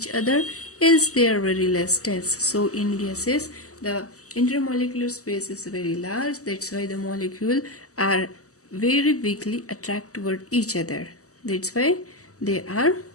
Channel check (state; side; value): late; right; 0.66 ms